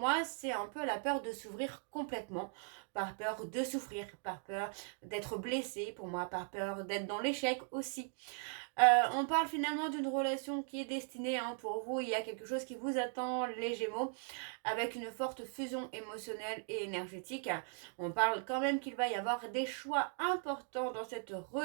c'est un peu la peur de s'ouvrir complètement, par peur de souffrir, par peur d'être blessé, pour moi par peur d'être dans l'échec aussi. On parle finalement d'une relation qui est destinée pour vous, il y a quelque chose qui vous attend les Gémeaux, avec une forte fusion émotionnelle et énergétique. On parle quand même qu'il va y avoir des choix importants dans cette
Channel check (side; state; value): left; silent; 52 dB below the other